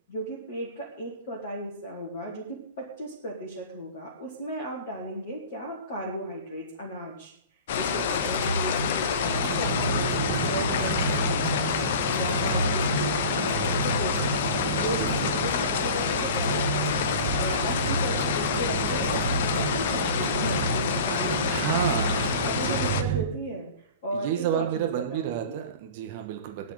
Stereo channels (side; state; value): both; inverted; correlation -0.37